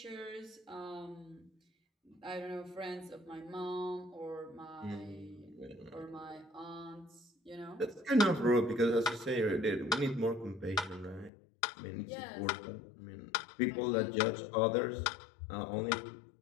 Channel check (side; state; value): right; drops out; at 11.3 s